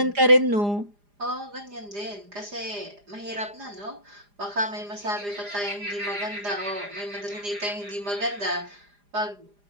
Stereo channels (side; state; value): left; late; 4.9 ms